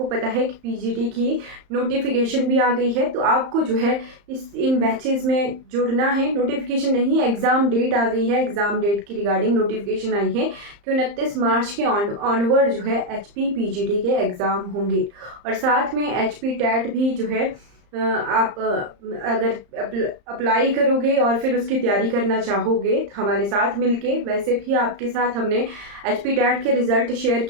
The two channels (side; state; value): left; late; 35 ms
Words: पता है कि पीजीटी की नोटिफिकेशन भी आ गई है, तो आपको जो है इन बैचेस में जुड़ना है। नोटिफिकेशन नहीं, एग्ज़ाम डेट आ गई है। एग्ज़ाम डेट की रिगार्डिंग नोटिफिकेशन आई है कि 29 मार्च के ऑनवर्ड जो है एचपी पीजीटी के एग्ज़ाम होंगे। और साथ में एचपी टेट भी जो है आप अगर अप्लाई करोगे और फिर उसकी तैयारी करना चाहोगे हमारे साथ मिलके, वैसे भी आपके साथ हमने एचपी टेट के रिज़ल्ट शेयर